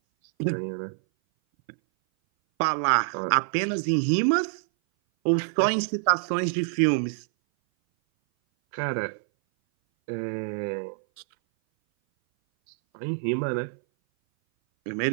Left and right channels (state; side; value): silent; left; 58 dB below the other